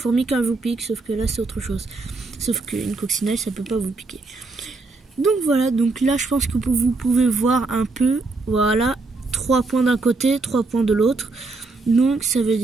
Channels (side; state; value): left; quieter; 3.6 dB